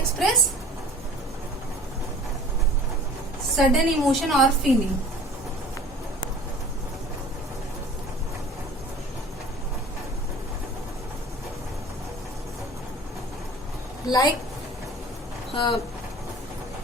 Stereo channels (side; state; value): both; normal; correlation 0.44